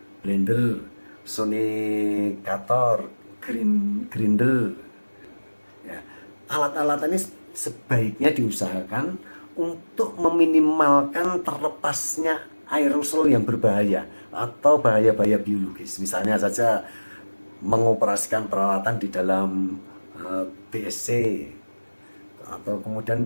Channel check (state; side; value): inverted; both; correlation -1.00